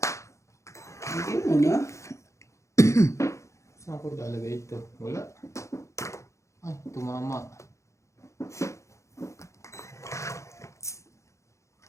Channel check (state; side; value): late; right; 0.14 ms